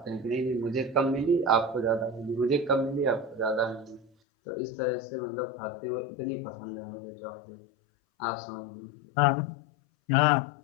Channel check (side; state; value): right; drops out; at 4.1 s